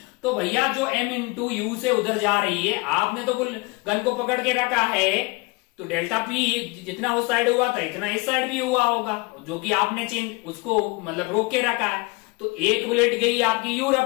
तो भैया जो m इंटू यू से उधर जा रही है, आपने तो गन को पकड़ के रखा है तो डेल्टा पी जितना उस साइड हुआ था इतना इस साइड भी हुआ होगा, जो कि आपने चेंज उसको मतलब रोक के रखा है। तो एक बुलेट गई आपकी यू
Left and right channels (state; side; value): quieter; right; 26.5 dB